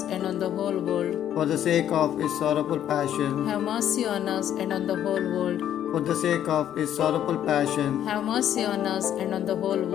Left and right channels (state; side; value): quieter; right; 10.6 dB